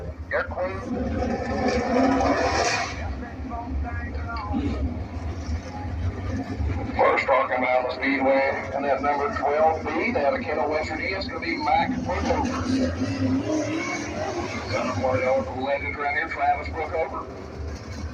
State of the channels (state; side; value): identical; both; correlation 1.00